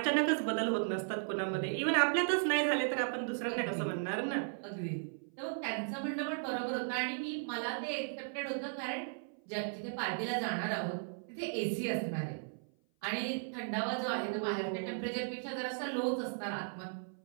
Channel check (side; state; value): left; silent; 54 dB below the other